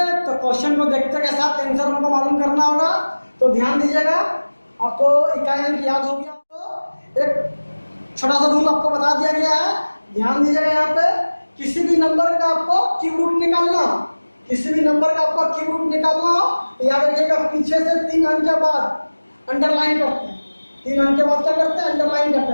तो क्वेश्चन को देखते के साथ आंसर हमको मालूम करना होगा। तो ध्यान दीजिएगा, आपको इकाई अंक याद हो गया तो एक छोटा सा रूल आपको बता दिया गया है। ध्यान दीजिएगा, यहाँ पे किसी भी नंबर का आपको क्यूब रूट निकालना, किसी भी नंबर का आपको क्यूब रूट निकालना हो तो याद रखिएगा, पीछे से 3 अंक के बाद अंडरलाइन करते हैं। 3 अंक के बाद क्या करते हैं, अंडरलाइन करते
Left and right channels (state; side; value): inverted; both; correlation -1.00